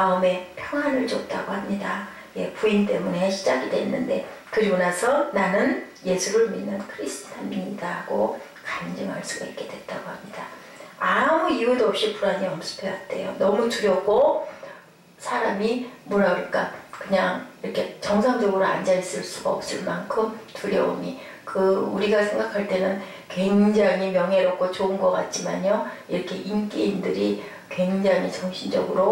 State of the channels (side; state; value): both; identical; correlation 1.00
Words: 평안을 줬다고 합니다. 예, 부인 때문에 시작이 됐는데 그리고 나서 나는 예수를 믿는 크리스찬입니다 하고 간증할 수가 있게 됐다고 합니다. 아무 이유도 없이 불안이 엄습해왔대요. 너무 두렵고 사람이 뭐라 그럴까 그냥 이렇게 정상적으로 앉아있을 수가 없을 만큼 두려움이 우리가 생각할 때는 굉장히 명예롭고 좋은 것 같지만요. 이렇게 인기인들이 굉장히